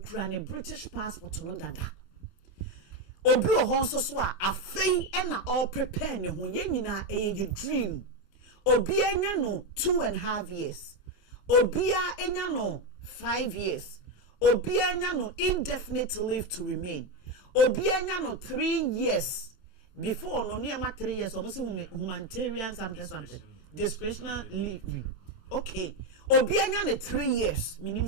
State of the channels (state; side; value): late; right; 29 ms